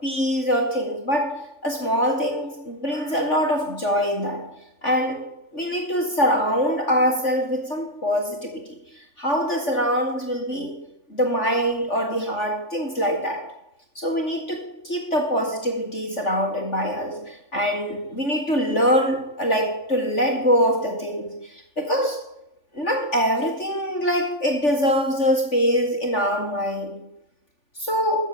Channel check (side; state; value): right; late; 3.4 ms